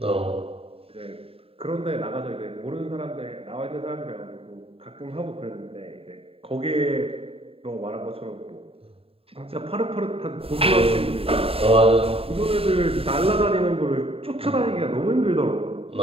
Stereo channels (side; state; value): left; late; 0.27 ms